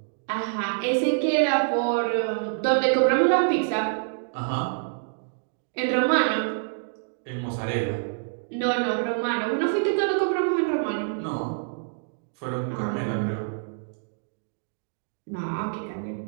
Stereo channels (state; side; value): silent; left; digital silence